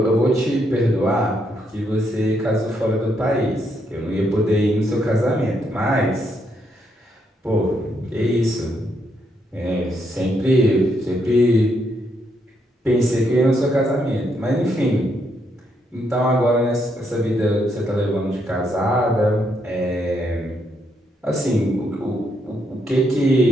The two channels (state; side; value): normal; both; correlation 0.76